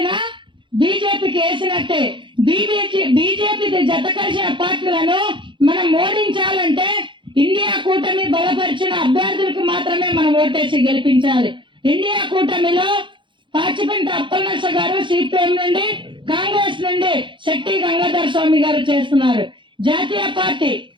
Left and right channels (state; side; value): late; left; 0.23 ms